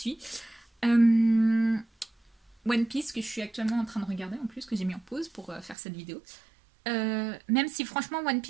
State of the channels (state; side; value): drops out; left; at 5.8 s